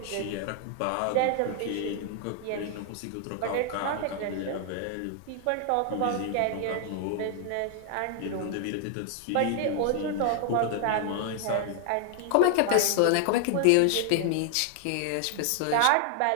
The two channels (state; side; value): different; both; correlation 0.00